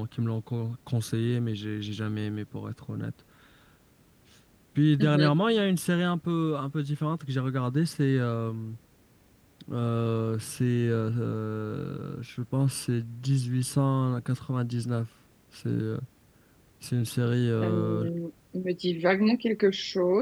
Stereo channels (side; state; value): both; identical; correlation 1.00